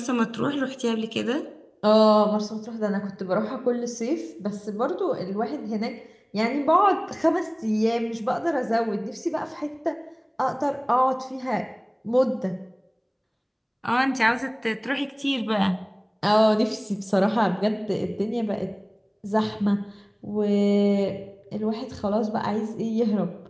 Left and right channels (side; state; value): both; identical; correlation 1.00